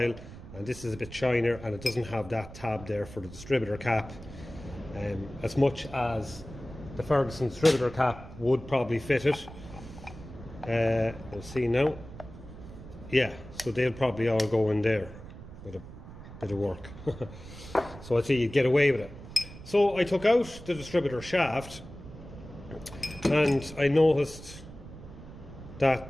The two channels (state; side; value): noise; right; rumble, 15 dB below the sound